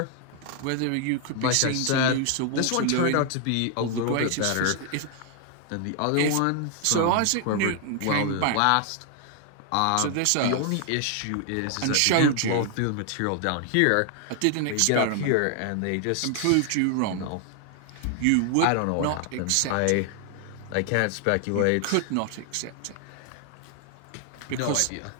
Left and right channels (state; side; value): different; both; correlation 0.00